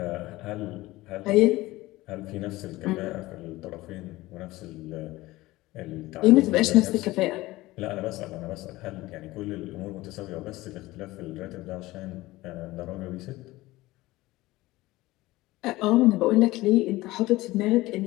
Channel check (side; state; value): right; quieter; 18.7 dB